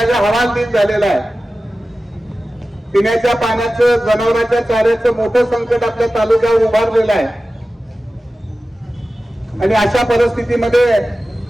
हवालदिल झालेला आहे। पिण्याच्या पाण्याचं, जनावरांच्या चाऱ्याचं मोठं संकट आपल्या तालुक्यावर उभारलेलं आहे आणि अशा परिस्थितीमध्ये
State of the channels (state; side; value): normal; both; correlation 0.95